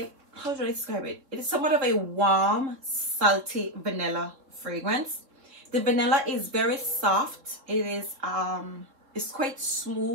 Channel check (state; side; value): late; left; 3.7 ms